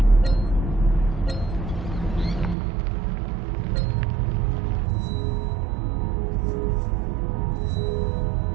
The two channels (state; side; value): drops out; left; at 2.6 s